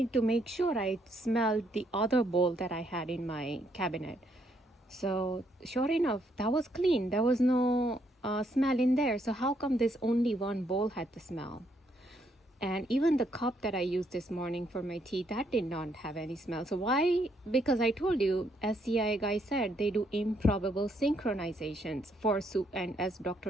to make sure, I smelled the other bowl that I had in my cabinet. So sure enough, that was clean. There was no smell in there. So how come this only one bowl had the smell? And even the cup that I used this morning for my tea, that did not have any smell. So why? Because I told you, as CIA guy said, they do improbable synchronizations for and as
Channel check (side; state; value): both; normal; correlation 0.73